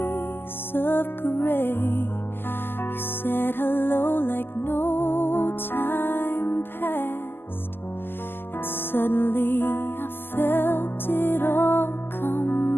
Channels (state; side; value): late; right; 0.10 ms